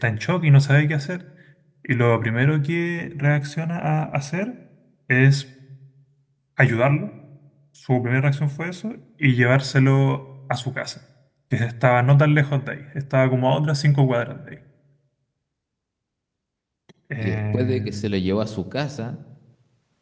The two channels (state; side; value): identical; both; correlation 1.00